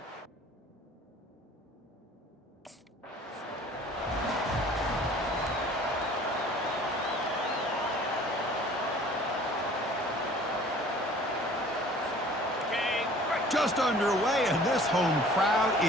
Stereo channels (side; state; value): both; normal; correlation 0.49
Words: Just underway, and this home crowd